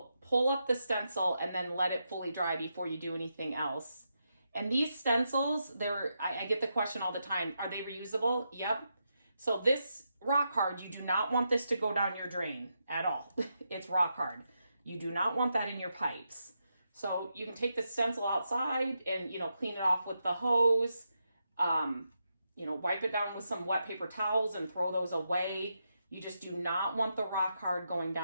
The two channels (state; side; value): inverted; both; correlation -0.84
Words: pull up the stencil and then let it fully dry before you do anything else. And these stencils, I get the question all the time, are they reusable? Yep. So this rock hard, you do not want this to go down your drain at all. It's rock hard. You do not want that in your pipes. So you can take the stencil outside and, clean it off with the hose, wipe it down with some wet paper towels and throw those away. You just do not want the rock hard going